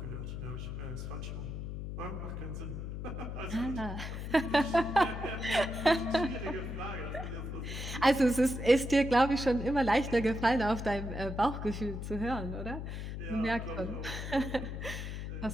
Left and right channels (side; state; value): left; noise; hum, 6 dB below the sound